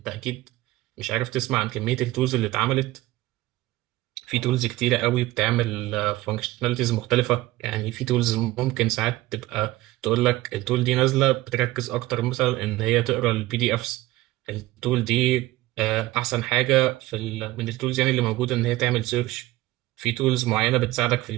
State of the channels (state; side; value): quieter; left; 17.7 dB